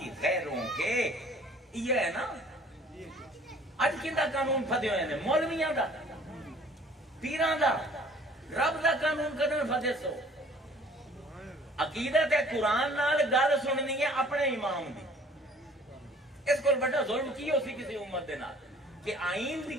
غیروں کے، یہ ہے نا اج کیندا قانون پھدے ہوئے نے، مولویاں دا، پیراں دا، رب دا قانون کدن پھدے سو؟ عقیدت ہے قرآن نال گل سننی ہے اپنے امام دی۔ اس کو بڑا ظلم کی ہو سی کسی امت دے نال کہ آئین دی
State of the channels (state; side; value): normal; both; correlation 0.53